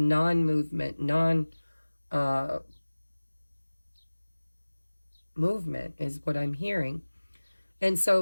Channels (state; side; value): inverted; both; correlation -1.00